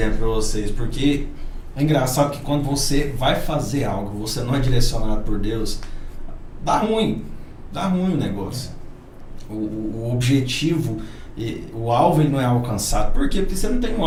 pra vocês? Porque é engraçado que quando você vai fazer algo, você não é direcionado por Deus, dá ruim o negócio. O objetivo, o alvo, ele não é alcançado. Por quê? Porque você não tem um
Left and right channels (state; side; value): identical; both; correlation 1.00